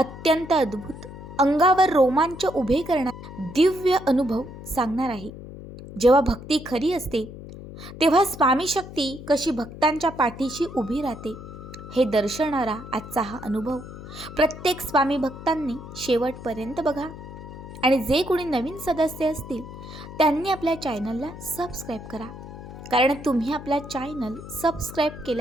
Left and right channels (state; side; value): noise; left; hum, 13 dB below the sound